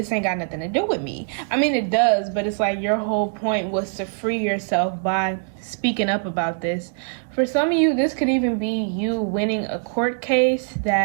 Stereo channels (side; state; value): left; silent; 63 dB below the other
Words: ain't got nothing to do with me. I mean, it does, but it's like your whole point was to free yourself by speaking up about this. For some of you, this could even be you winning a court case